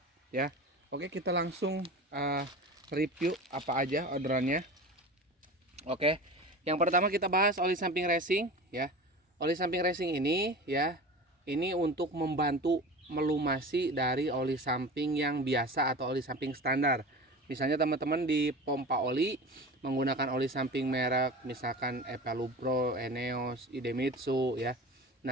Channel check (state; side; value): normal; both; correlation 0.33